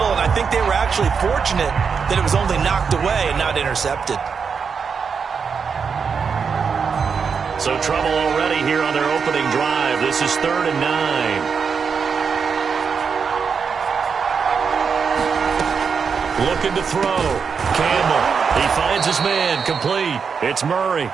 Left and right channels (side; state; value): left; quieter; 6.0 dB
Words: and I think they were actually fortunate that it was only knocked away and not intercepted. So trouble already here on their opening drive. This is 3rd and 9. Looking to throw. Campbell. He finds his man. Complete. It's Murray.